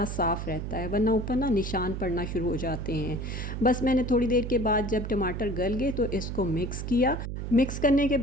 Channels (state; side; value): noise; right; hum, 5 dB below the sound